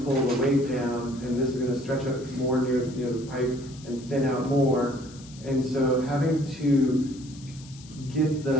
pull the weight down, and this is going to stretch up more near the pipe and thin out more. And so having to get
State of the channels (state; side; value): noise; left; hiss, 21 dB below the sound